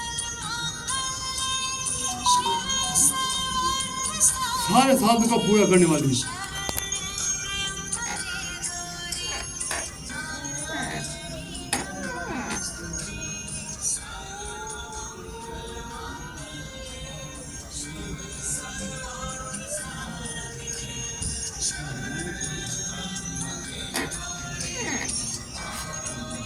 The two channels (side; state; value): both; identical; correlation 1.00